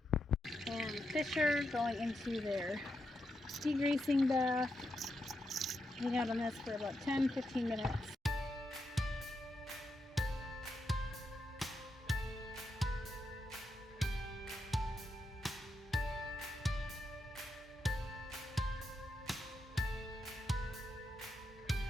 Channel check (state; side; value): normal; both; correlation 0.84